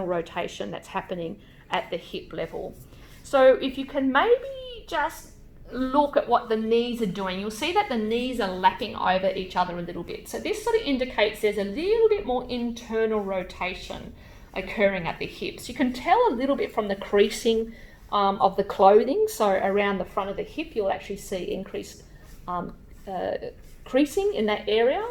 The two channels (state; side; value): identical; both; correlation 1.00